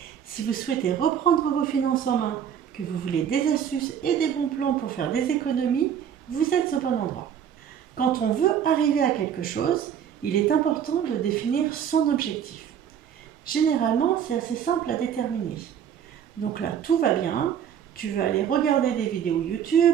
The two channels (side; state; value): left; quieter; 8.8 dB